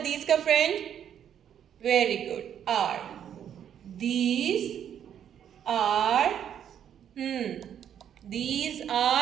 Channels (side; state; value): left; quieter; 9.3 dB